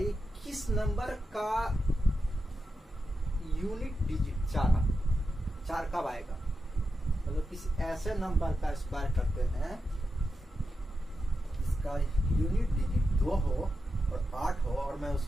ये किस नंबर का यूनिट डिजिट 4 कब आएगा। मतलब किसी ऐसे नंबर का स्क्वायर करते हैं जिसका यूनिट डिजिट 2 हो और 8 हो और मैं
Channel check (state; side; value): normal; both; correlation 0.89